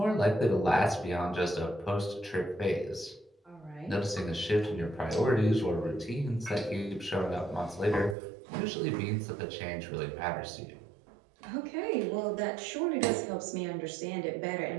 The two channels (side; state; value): left; drops out; at 8.2 s